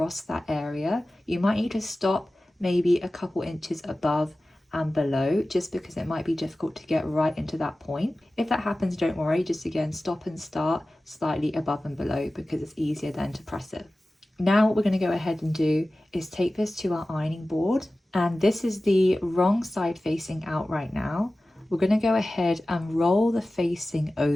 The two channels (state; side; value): normal; both; correlation 0.96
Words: that area. You might need to stop maybe a couple inches above and below, just because it might be difficult to get right into that point. If that happens, don't worry, just again stop and start slightly above and below, because it's easier then to press it. Now what we're going to go ahead and do is take this to our ironing board, and this is the wrong side facing out right now. We're going to go ahead and roll the facing